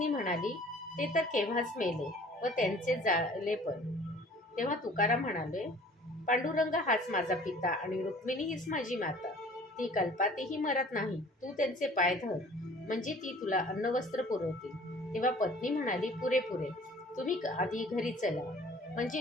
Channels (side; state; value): both; normal; correlation 0.50